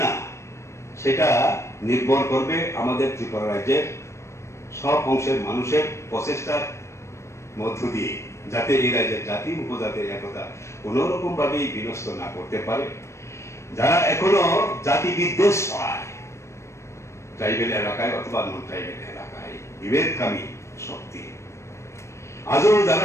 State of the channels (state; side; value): late; right; 0.13 ms